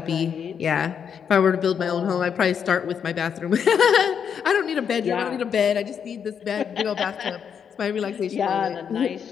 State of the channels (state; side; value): quieter; right; 7.5 dB